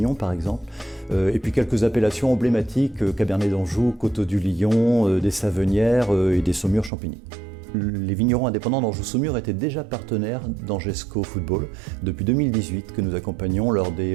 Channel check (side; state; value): left; drops out; at 6.9 s